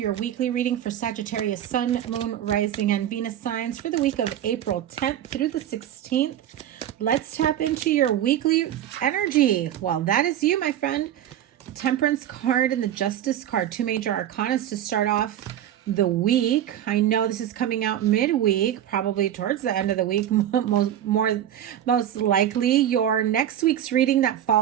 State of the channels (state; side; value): quieter; left; 11.1 dB